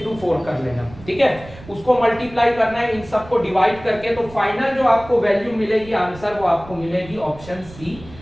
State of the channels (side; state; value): right; noise; rumble, 18 dB below the sound